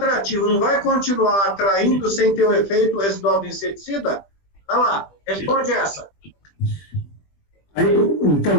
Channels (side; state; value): right; late; 20 ms